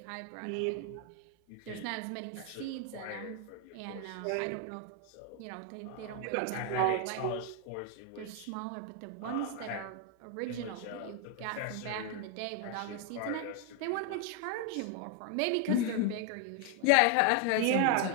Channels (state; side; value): different; both; correlation 0.01